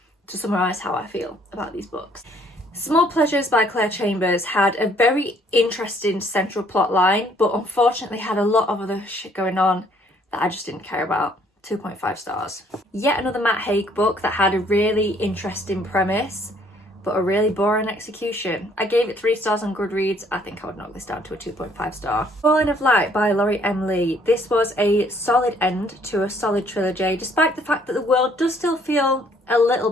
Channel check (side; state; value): both; normal; correlation 0.63